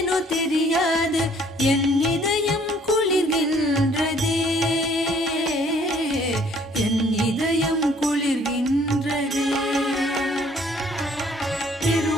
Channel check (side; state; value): both; normal; correlation 0.60